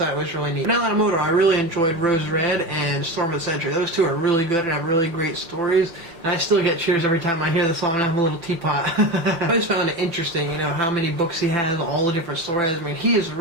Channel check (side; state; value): left; late; 6.0 ms